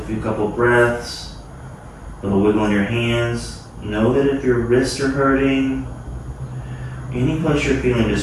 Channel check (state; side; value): identical; both; correlation 1.00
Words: few couple breaths, a little wiggle in your hands. Know that if your wrists are hurting, any place you're feeling